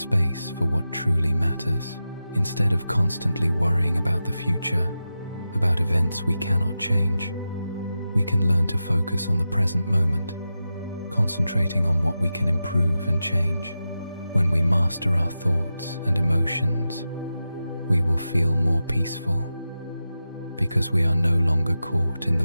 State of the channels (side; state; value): both; inverted; correlation -0.91